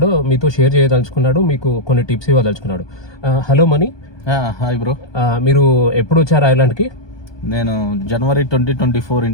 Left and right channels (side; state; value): right; late; 1.2 ms